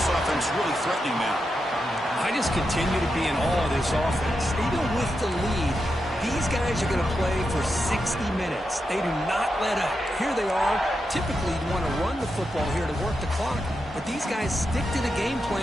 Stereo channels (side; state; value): both; normal; correlation 0.87